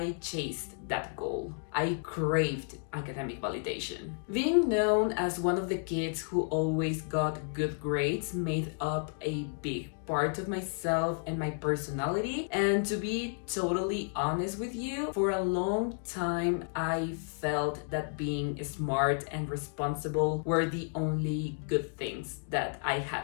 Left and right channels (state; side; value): silent; right; 56 dB below the other